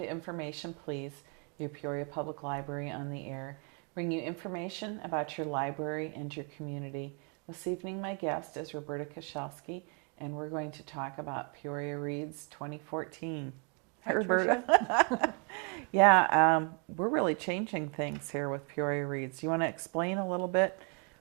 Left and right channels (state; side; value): quieter; left; 37.6 dB